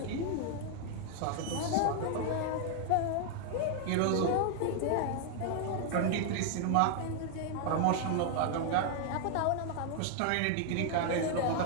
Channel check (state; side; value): different; both; correlation 0.00